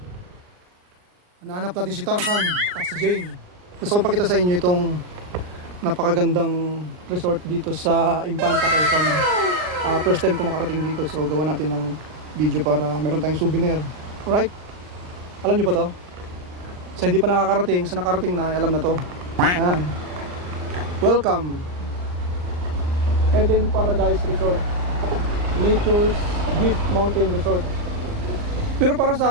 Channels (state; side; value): late; left; 39 ms